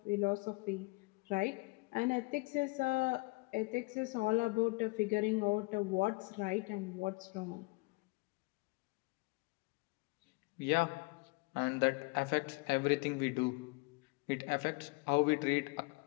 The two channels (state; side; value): quieter; right; 27.5 dB